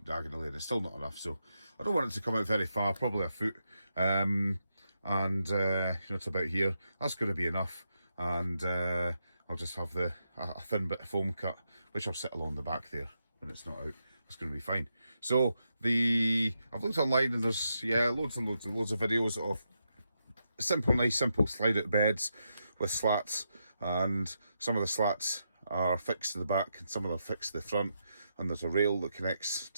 diagonally and it's still not enough, so I don't want it to come out very far, probably a foot, and it's about here. That's going to be enough, and I'll just have a thin bit of foam cut, which I'll sit along the back there when it's not out. It's going to be fine. So I've looked online and there's loads and loads of videos of nice simple slide out beds with slats, and some of the slats are fixed to the back and some of them are fixed to the front, and there's a rail that connects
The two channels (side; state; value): both; inverted; correlation -0.84